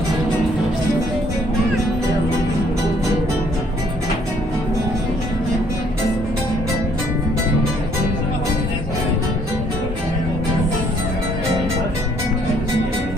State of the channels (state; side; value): normal; both; correlation 0.64